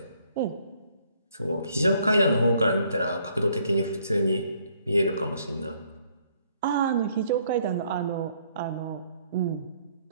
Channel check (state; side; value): inverted; both; correlation -0.66